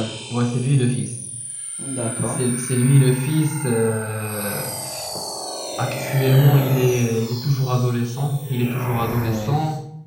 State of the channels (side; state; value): both; identical; correlation 1.00